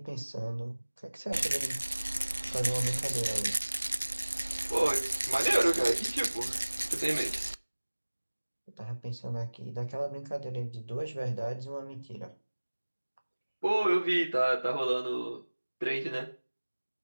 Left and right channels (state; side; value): inverted; both; correlation -1.00